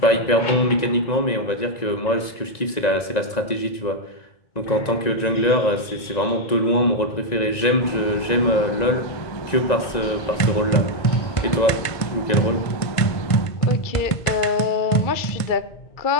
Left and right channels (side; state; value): right; late; 1.9 ms